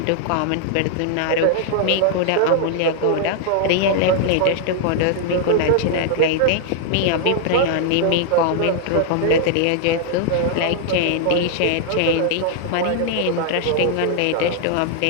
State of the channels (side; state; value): both; different; correlation 0.00